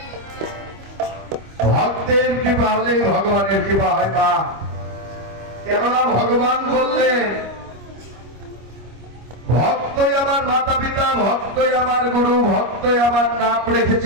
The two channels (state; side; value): late; left; 25 ms